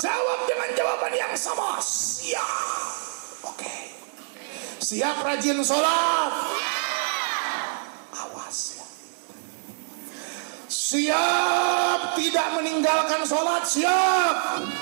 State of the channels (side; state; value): left; silent; 61 dB below the other